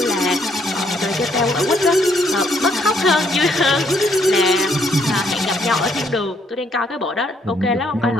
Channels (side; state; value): both; normal; correlation 0.70